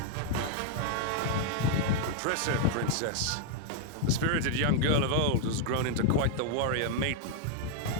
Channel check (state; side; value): different; both; correlation 0.00